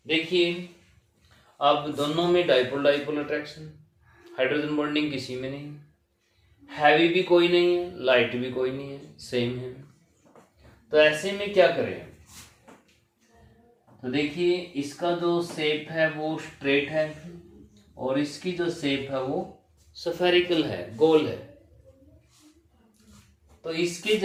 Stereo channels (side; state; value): both; identical; correlation 1.00